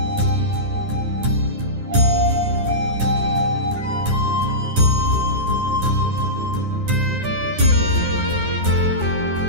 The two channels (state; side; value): late; left; 9.6 ms